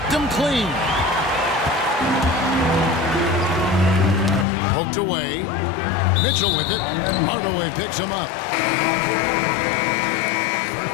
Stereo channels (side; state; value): right; drops out; at 4.5 s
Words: him clean. Poked away. Mitchell with it. Hardaway picks him up. First